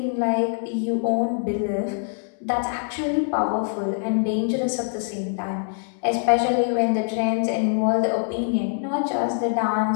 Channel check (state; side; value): silent; right; digital silence